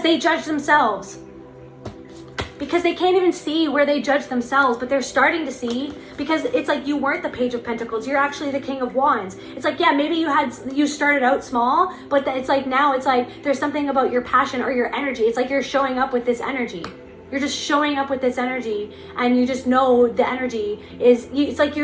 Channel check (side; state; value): both; identical; correlation 1.00